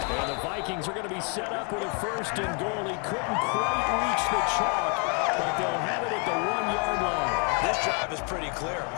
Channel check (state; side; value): quieter; right; 37.2 dB